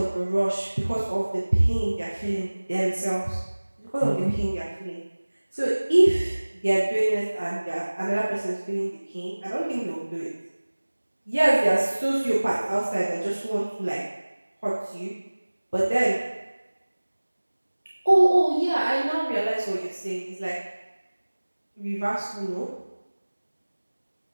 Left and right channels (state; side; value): inverted; both; correlation -1.00